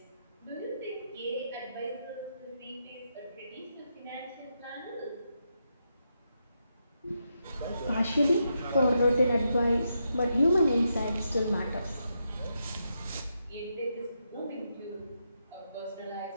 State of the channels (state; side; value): inverted; both; correlation -0.83